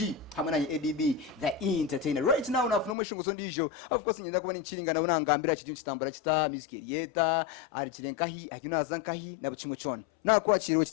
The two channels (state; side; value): drops out; right; at 3.0 s